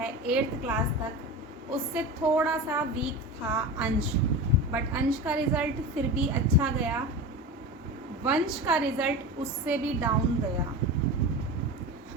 8th क्लास तक, उससे थोड़ा सा वीक था अंश, बट अंश का रिज़ल्ट फिर भी अच्छा गया। वंश का रिज़ल्ट उससे भी डाउन गया।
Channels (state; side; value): normal; both; correlation 0.28